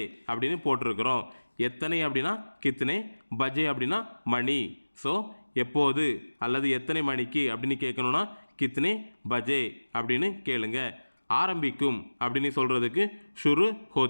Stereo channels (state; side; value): inverted; both; correlation -1.00